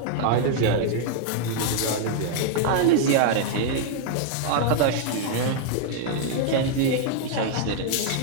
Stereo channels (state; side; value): different; both; correlation -0.01